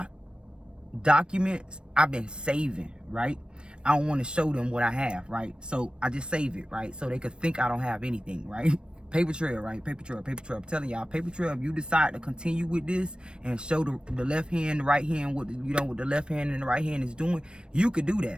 documents I've been saving, right? I don't want to show them what I have, right? So I just save it, right? So they could think I don't have anything, right? Paper trail, right? Paper trail, paper trail. I'm telling y'all, paper trail, if you decide to continue with this and show the left hand, the right hand, what, you know, what the left hand and the right hand is doing, you could do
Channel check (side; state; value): left; late; 0.055 ms